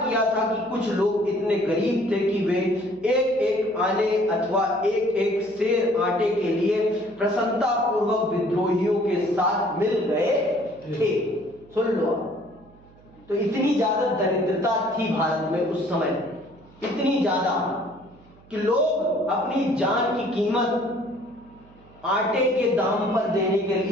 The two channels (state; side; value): noise; right; hum, 26 dB below the sound